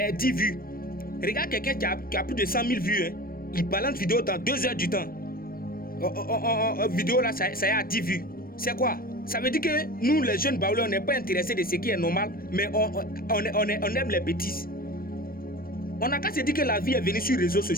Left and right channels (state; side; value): late; right; 0.43 ms